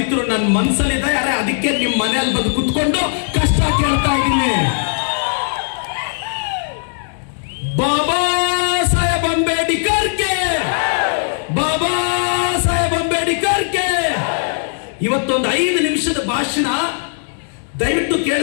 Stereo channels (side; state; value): right; silent; digital silence